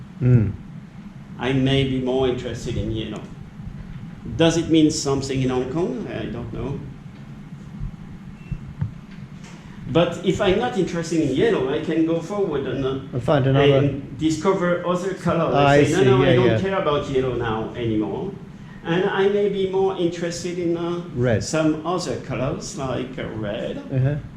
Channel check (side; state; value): both; identical; correlation 1.00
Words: I may be more interested in yellow. Does it mean something in Hong Kong? I don't know. But if I'm not interested in yellow, I can go forward and find another and discover other colors. I say, see. no, I don't care about yellow now anymore. And I may be more interested in red. Some other colors, like red.